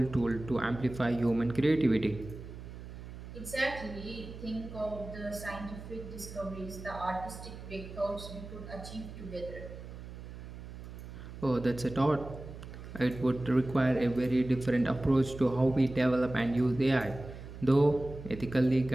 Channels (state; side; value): noise; right; hum, 12 dB below the sound